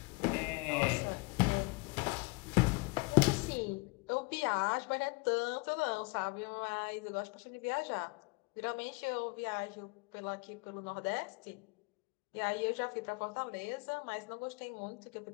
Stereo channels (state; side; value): quieter; right; 27.9 dB